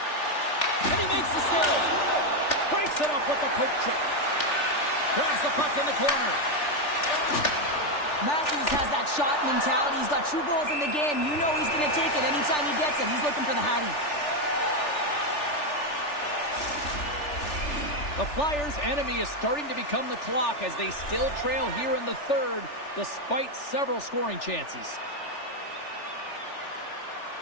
And he makes the save. Breaks it up with the poke check. Grabs the puck in the corner. Matthews has that shot mentality. He's got 2 goals in the game. You know he's going to take it anytime he gets it. He's looking for the Hattie. The Flyers' enemy is starting to become the clock as they still trail here in the third, despite several scoring chances.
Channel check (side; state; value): right; late; 3.4 ms